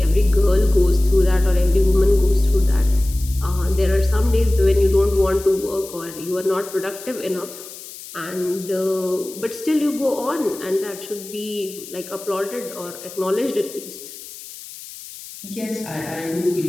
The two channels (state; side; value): noise; left; hiss, 15 dB below the sound